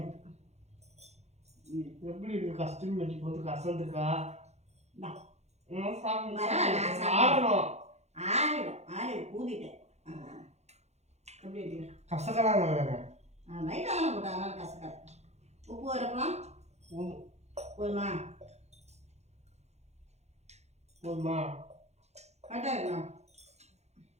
எப்படி இருக்கு? கஸ்தூரி மெட்டி போட்டு கசந்துருக்கா? ஆறிடும் ஊதிட்டேன். எப்படி இருக்கு? கசக்கலாங்க லைட்டாக தானே போட்டா, அதனால கசக்காது. உப்பு வரப்பலாம் போதுமா? கரெக்டாக இருக்கலாம்.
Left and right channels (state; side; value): late; left; 0.32 ms